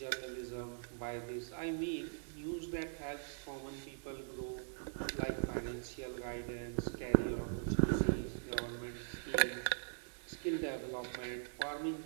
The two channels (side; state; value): left; silent; digital silence